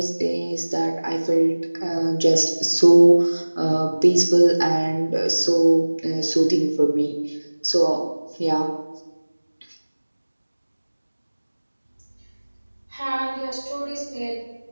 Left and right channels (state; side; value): inverted; both; correlation -1.00